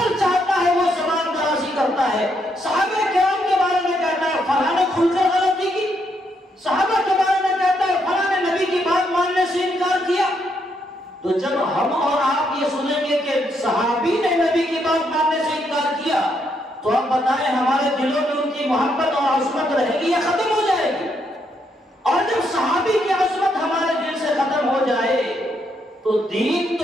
چاہتا ہے وہ زبان درازی کرتا ہے۔ صحابہ کرام کے بارے میں کہتا ہے فلاں نے کھل کر غلطی کی، صحابہ کے بارے میں کہتا ہے فلاں نے نبی کی بات ماننے سے انکار کیا۔ تو جب ہم اور آپ یہ سنیں گے کہ صحابی نے نبی کی بات ماننے سے انکار کیا تو آپ بتائیں ہمارے دلوں میں ان کی محبت اور عظمت رہے گی یا ختم ہو جائے گی؟ اور جب صحابی کی عظمت ہمارے دل سے ختم ہو جائے تو دین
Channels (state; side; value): normal; both; correlation 0.76